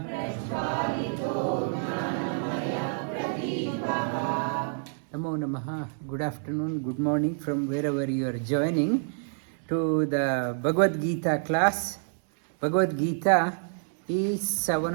Namo Namaha. Good afternoon, good morning from wherever you are joining to the Bhagavad Gita class. Bhagavad Gita is one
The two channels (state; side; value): silent; left; digital silence